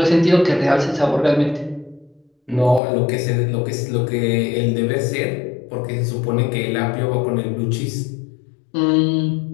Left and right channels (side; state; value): right; drops out; at 2.8 s